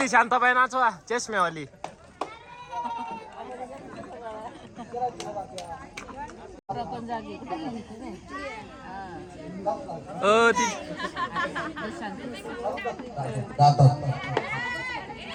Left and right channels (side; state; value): both; identical; correlation 1.00